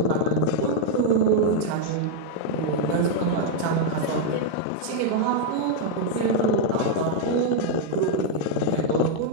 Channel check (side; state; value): both; different; correlation 0.00